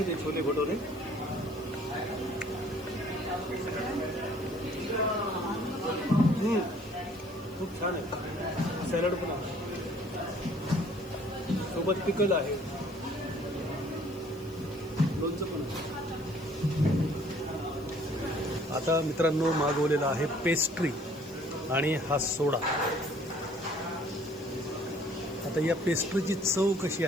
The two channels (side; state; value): left; noise; hiss, 24 dB below the sound